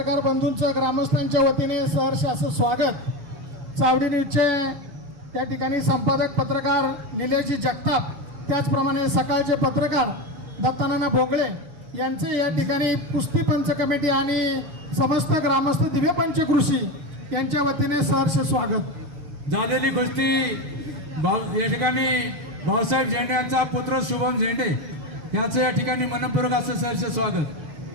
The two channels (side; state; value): left; late; 7.0 ms